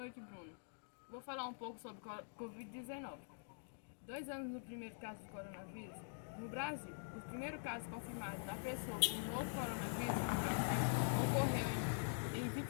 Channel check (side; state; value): right; silent; digital silence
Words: Bruno. Vou falar um pouco sobre Covid-19. 2 anos no primeiro caso do coronavírus. No Brasil, o primeiro caso confirmado da pessoa com o novo coronavírus no Brasil ocorreu em